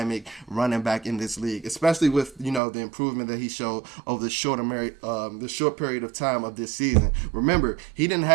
running back in this league, especially with, the improvement that he showed over the short period of time of this season. Remember, he didn't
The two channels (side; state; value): left; drops out; at 2.6 s